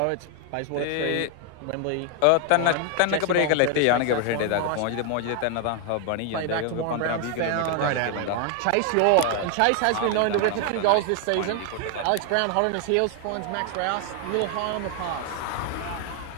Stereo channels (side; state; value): both; different; correlation 0.00